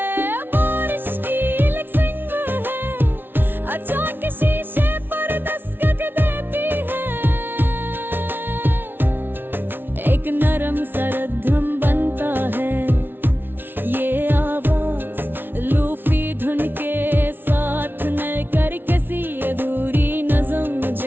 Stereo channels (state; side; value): late; left; 0.10 ms